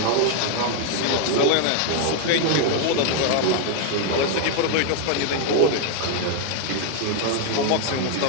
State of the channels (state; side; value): different; both; correlation 0.00